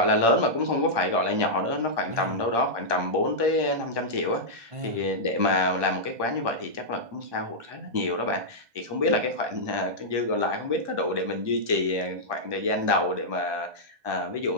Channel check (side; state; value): left; late; 1.2 ms